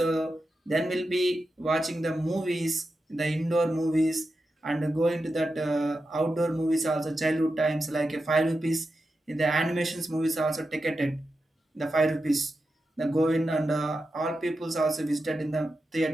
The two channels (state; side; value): normal; both; correlation 0.89